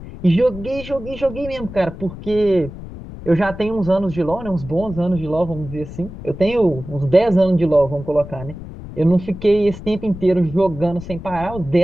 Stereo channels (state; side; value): noise; left; rumble, 12 dB below the sound